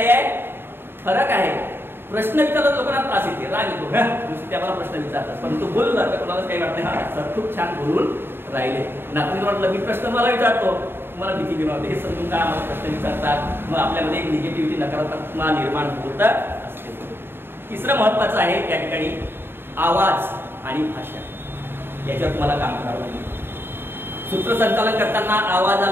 आहे फरक आहे. प्रश्न विचारत लोकांना त्रास येते, राग येतो, नुसते आम्हाला प्रश्न विचारतात. पण तू बोलला तर कोणाला काही वाटत नाही हा सर खूप छान बोलून राहिले. नातून वाटलं मी प्रश्न मला विचारतो तुम्हाला भीती निर्माण होते हे समजून काय आम्हाला प्रश्न विचारतात. मग आपल्यामध्ये एक निगेटिव्हिटी नकारात्मकता निर्माण होत असते. तिसरं महत्वाचं आहे या ठिकाणी आवाज आणि भाषा याच्यावर तुम्हाला काम करावं लागेल. सूत्रसंचालन करताना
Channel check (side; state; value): left; late; 0.11 ms